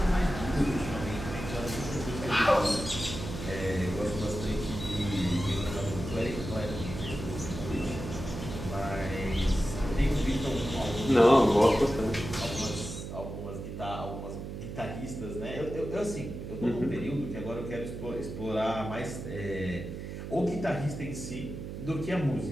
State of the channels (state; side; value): noise; right; hum, 8 dB below the sound